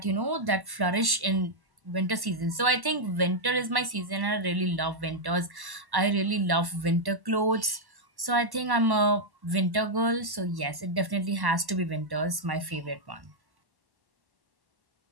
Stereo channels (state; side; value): late; left; 1.1 ms